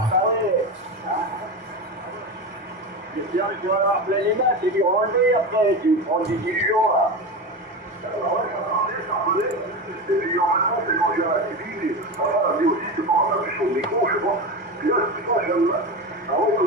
Tu vas avoir plein les mains, c'est du renlever après, tu prends des dilutions là. Et puis en même temps, c'est manger à la TV, voilà, mais aussi c'est pas un peu chaud au micro, je sais pas. Puis là, c'est pas, j'aime. Ah ouais,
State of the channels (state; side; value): normal; both; correlation 0.22